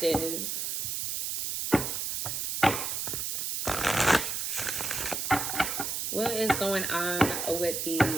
What is going on with the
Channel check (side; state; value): right; noise; hiss, 2 dB below the sound